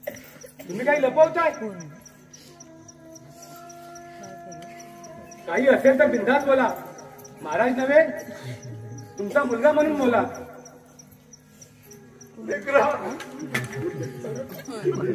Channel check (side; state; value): both; identical; correlation 1.00